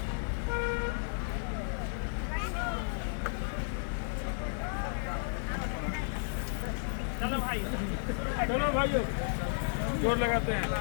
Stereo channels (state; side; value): silent; right; digital silence